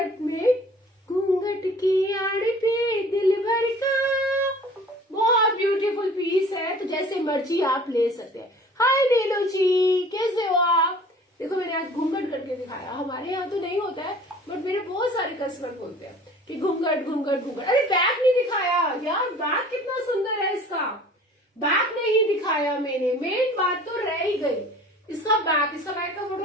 में, घूंघट की आड़ पे दिल भर का, बहुत ब्यूटीफुल पीस है। तो जैसे मर्जी आप ले सकते हैं। हाय नीलू जी, कैसे हो आप? देखो मैंने आज घूंघट करके दिखाया, हमारे यहाँ तो नहीं होता है बट मेरे बहुत सारे कस्टमर बोलते हैं कि घूंघट घूंघट घूंघट। अरे बैक नहीं दिखाया यार, बैक कितना सुंदर है इसका, बैक नहीं दिखाया मैंने, मेन बात तो रह ही गई। इसका बैक का फोटो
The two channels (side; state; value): both; normal; correlation 0.48